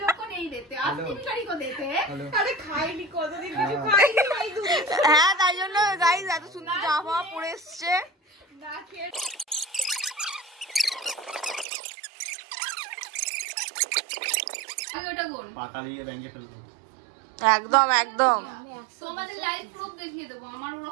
लोग को नहीं देते, असली भिखारी को देते हैं। আরে খাইনি কতদিন কিছু খাইনি ভাই দুধ হ্যাঁ, তাই জন্য গাইস এত সুন্দর জামা পরে এসছে। না খেয়ে আমি ওটা বল, পাতা দিয়ে ব্যাংকে ফেলবো। একদম একদম। তোমাদের লাইভ প্রুফ দেখিয়ে দেবো, আমার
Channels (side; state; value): left; drops out; at 11.7 s